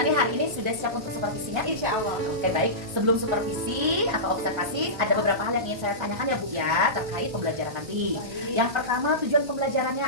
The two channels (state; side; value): late; left; 1.2 ms